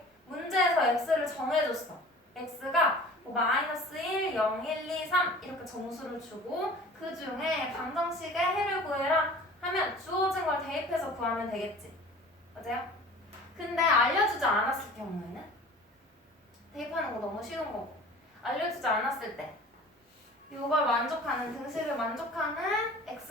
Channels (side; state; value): both; normal; correlation 0.44